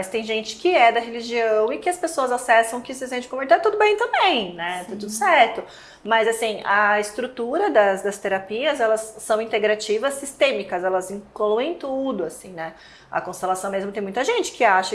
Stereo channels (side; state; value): both; identical; correlation 1.00